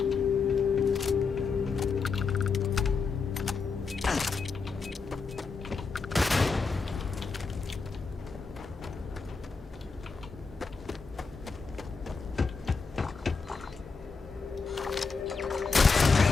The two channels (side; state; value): right; quieter; 4.8 dB